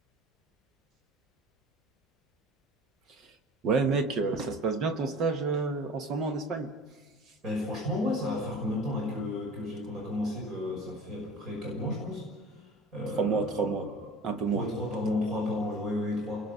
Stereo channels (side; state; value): both; normal; correlation 0.42